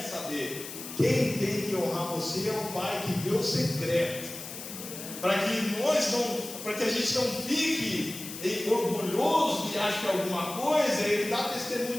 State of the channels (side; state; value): left; noise; hiss, 10 dB below the sound